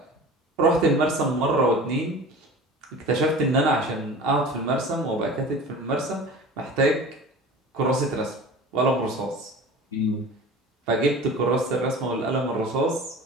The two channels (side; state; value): both; normal; correlation 0.38